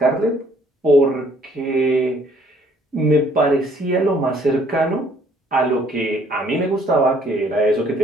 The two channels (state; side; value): normal; both; correlation 0.62